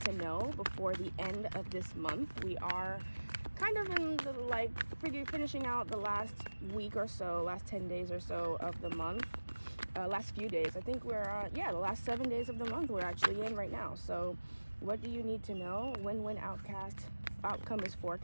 to know before the end of this month. We are kind of in the, finishing out the last week or so, last 10 days or so of the month. Last few days. I think we're, the last 7 days of the month we're actually in right now. So what do you need to know? Win-win outcome is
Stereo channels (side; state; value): both; inverted; correlation -1.00